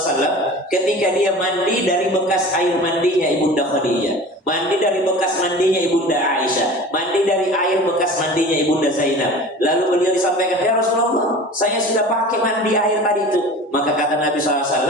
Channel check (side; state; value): both; normal; correlation 0.38